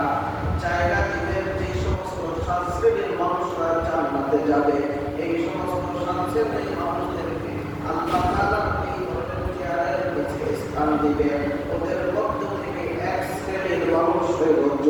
জায়গা দিবেন। যে সমস্ত 7 শ্রেণীর মানুষরা জান্নাতে যাবে, এই সমস্ত 7 শ্রেণীর মানুষদেরকে আল্লাহ তাআলা এই ধরনের চেয়ারের নিচে স্থান দিবেন। ওদের মধ্য থেকে 1 শ্রেণীর মানুষ হলো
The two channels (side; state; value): both; identical; correlation 1.00